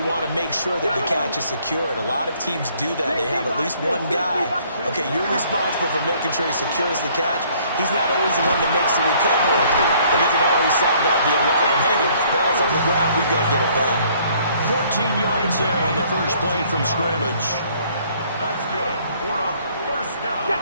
want to make sure that the catch is secured. A lot of teams do that. They have at least one guy. Okay, you're responsible for making sure he secures the catch. He's not always the one that makes the recovery, but he can always sound out the alarm. Hey, ball's on the ground. We've got to get it back. 14 yards there on the first play from scrimmage. That's good. For a first down.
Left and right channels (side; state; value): both; inverted; correlation -0.61